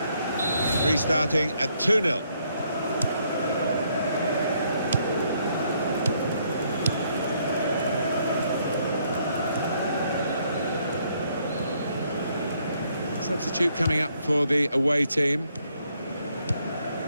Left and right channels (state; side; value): inverted; both; correlation -0.70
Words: Restarting at 2-0. Substitute coming up for the away team.